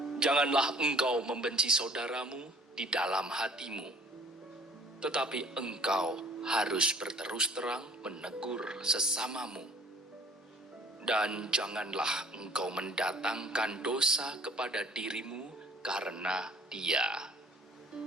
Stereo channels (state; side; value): normal; both; correlation 0.54